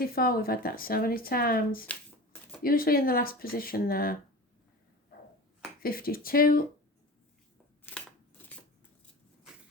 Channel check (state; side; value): normal; both; correlation 0.33